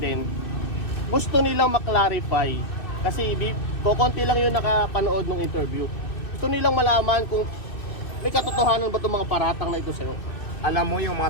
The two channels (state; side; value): late; right; 2.7 ms